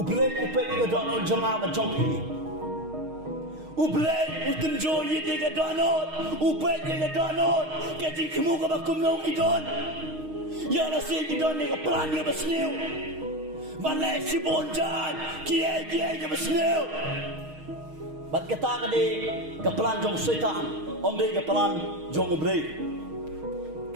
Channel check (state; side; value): late; left; 6.4 ms